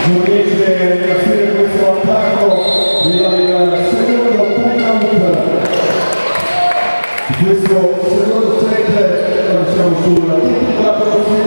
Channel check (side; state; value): both; inverted; correlation -1.00